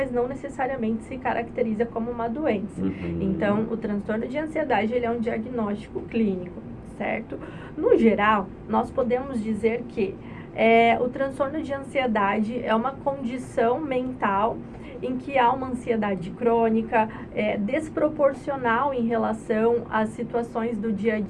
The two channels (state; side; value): identical; both; correlation 1.00